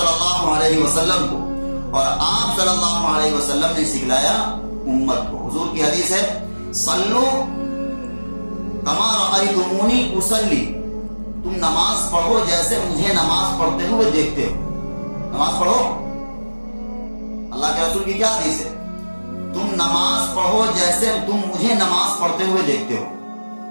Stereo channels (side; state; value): both; inverted; correlation -1.00